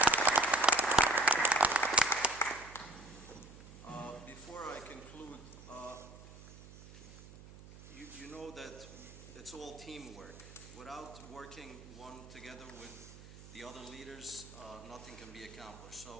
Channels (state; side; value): noise; right; hum, 17 dB below the sound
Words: Before I conclude, you know that it's all teamwork. Without working one together with the other leaders, nothing can be accomplished.